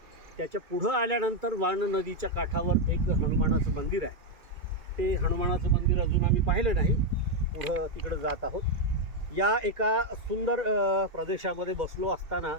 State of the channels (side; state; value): left; late; 2.3 ms